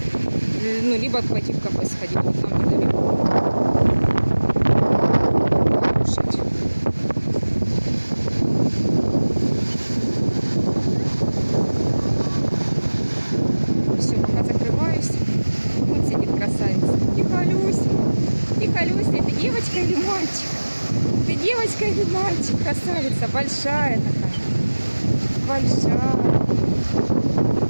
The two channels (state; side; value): inverted; both; correlation -1.00